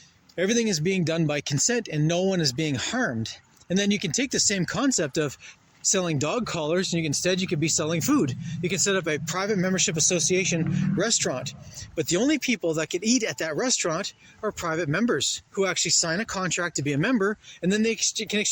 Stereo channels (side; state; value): both; identical; correlation 1.00